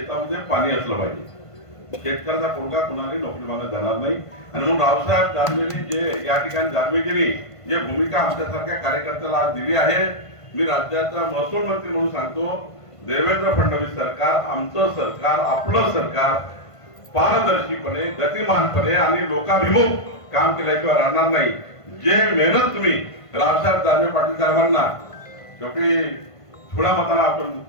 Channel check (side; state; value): right; late; 1.5 ms